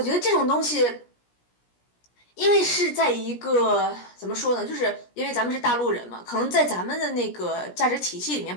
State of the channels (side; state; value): right; late; 17 ms